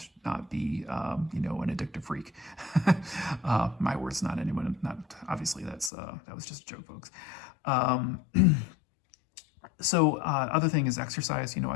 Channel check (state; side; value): drops out; right; at 5.9 s